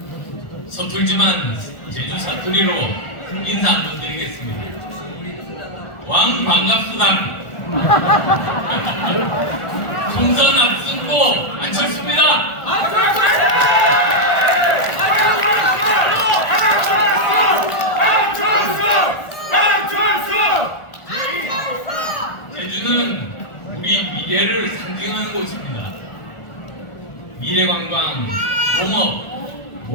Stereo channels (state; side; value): late; right; 1.4 ms